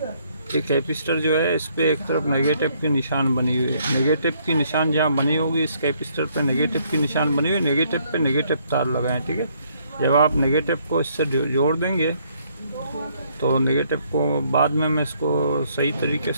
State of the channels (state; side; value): inverted; both; correlation -0.68